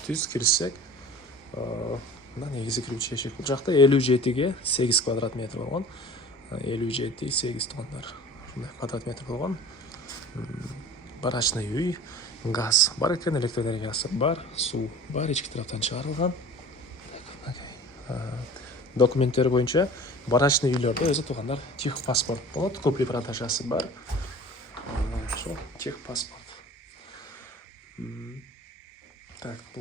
түз кирсек, мына негизи кирүүчү эшик. Бул жакта 57-ге 8 квадрат метр болгон. 57-8 тугандар. Ушундай квадрат метр болгон. Барачный үй, газ бар экен, электроэнергиясы бар, суу бар, ички тараптан чыгарылган. Документтери боюнча барачный үйлөрдө өзү тугандар техпаспорт болот, купли продажасы бар. Техпаспорт. Так,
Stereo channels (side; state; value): both; normal; correlation 0.41